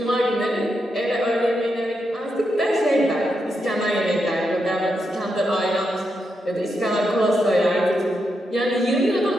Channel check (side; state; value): both; normal; correlation 0.84